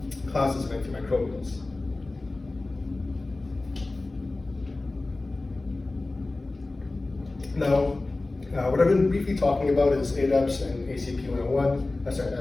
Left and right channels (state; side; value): quieter; right; 3.1 dB